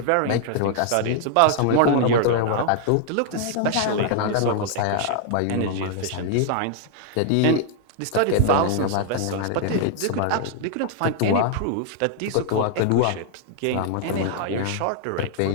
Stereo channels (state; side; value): different; both; correlation 0.00